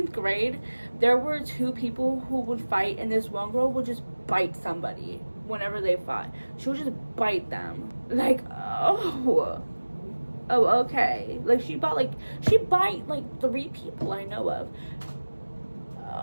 grade, there were 2 people who would fight, and this one girl would just bite somebody whenever they fought. She would just bite them. Like, oh, okay. Like, she bite like 3 people I know of.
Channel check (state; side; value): inverted; both; correlation -1.00